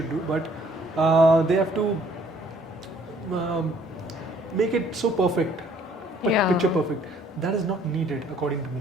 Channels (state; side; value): normal; both; correlation 0.61